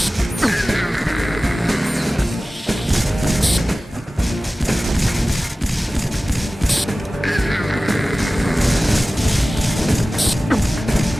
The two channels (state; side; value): normal; both; correlation 0.97